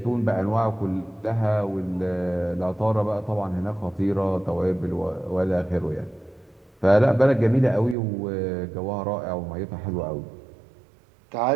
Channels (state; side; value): drops out; left; at 8.0 s